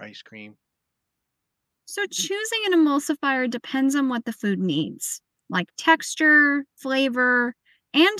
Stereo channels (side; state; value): both; identical; correlation 1.00